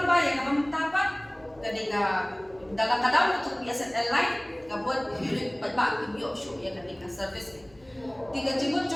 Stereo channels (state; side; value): noise; left; hum, 28 dB below the sound